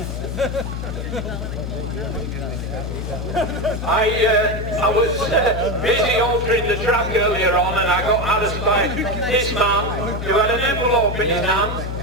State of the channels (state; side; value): noise; left; hum, 5 dB below the sound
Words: I was busy altering the track earlier on, and I got asked by this man who had an envelope in his hand.